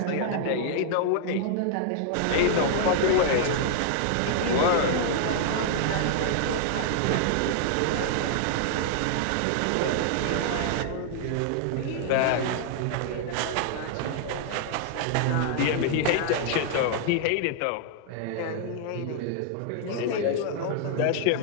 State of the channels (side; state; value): both; different; correlation -0.01